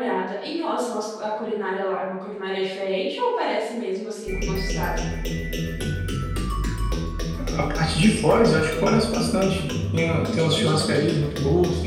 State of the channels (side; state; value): both; identical; correlation 1.00